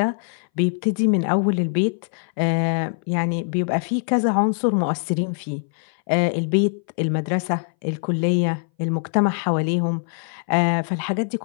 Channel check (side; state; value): right; silent; 61 dB below the other